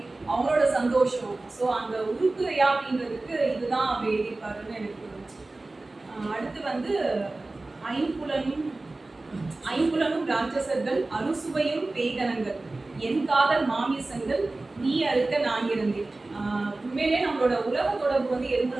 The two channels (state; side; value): quieter; left; 3.1 dB